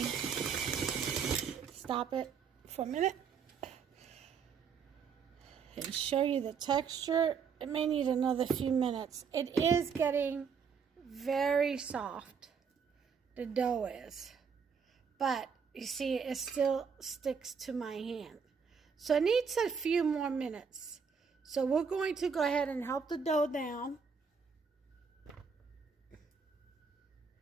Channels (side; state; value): left; quieter; 6.1 dB